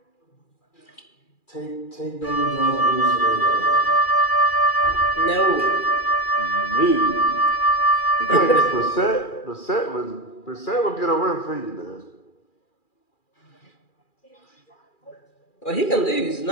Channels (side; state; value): right; late; 2.4 ms